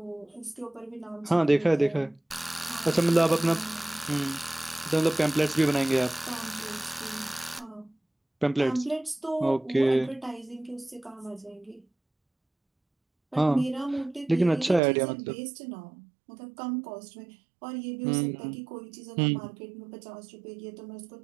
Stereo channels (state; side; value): drops out; left; at 14.8 s